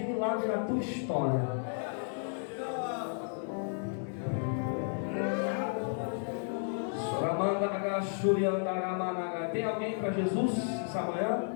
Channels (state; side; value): silent; right; digital silence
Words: milagre na tua história. Tem alguém para Jesus essa